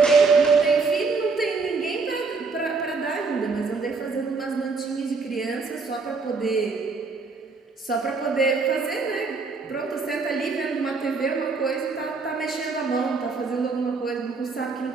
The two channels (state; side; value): quieter; left; 4.3 dB